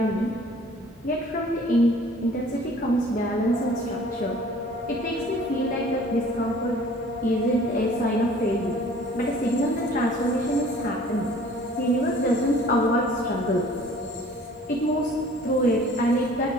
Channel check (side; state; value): both; normal; correlation 0.51